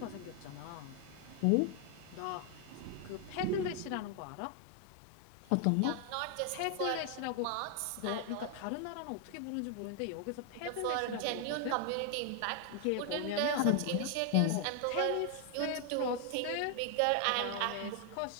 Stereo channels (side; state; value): both; different; correlation 0.00